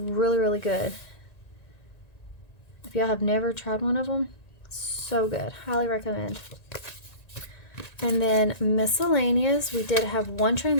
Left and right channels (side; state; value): right; late; 1.9 ms